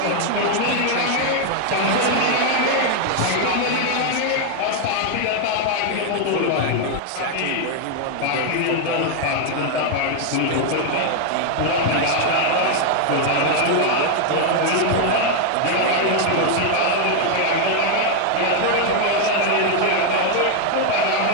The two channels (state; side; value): different; both; correlation 0.00